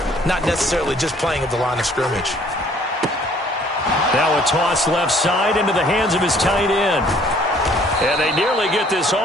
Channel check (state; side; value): normal; both; correlation 0.59